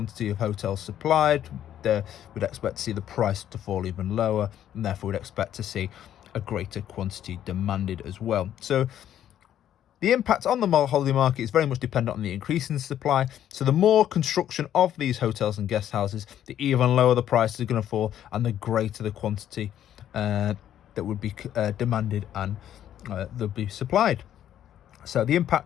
of hotels supplied, we'd expect to see the price to fall even lower, and therefore we'd expect to see a greater quantity demanded as well. So the impact on the holiday market is very much dependent on the increase in supply. So the more construction of these hotels and guest houses, the even lower the prices are going to fall, and the greater the quantity that would be demanded and they'll be supplied. So the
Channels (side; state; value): right; quieter; 10.9 dB